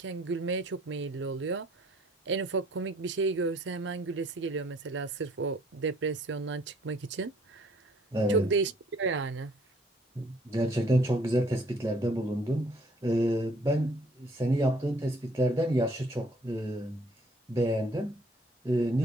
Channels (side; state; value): both; normal; correlation 0.60